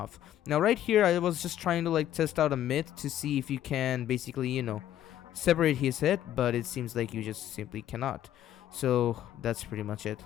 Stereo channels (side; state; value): right; quieter; 11.8 dB